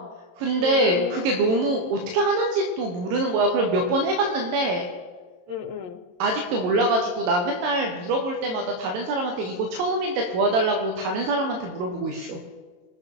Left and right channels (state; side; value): late; left; 22 ms